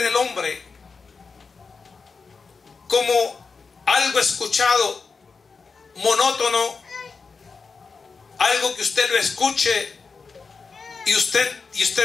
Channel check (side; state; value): right; quieter; 4.8 dB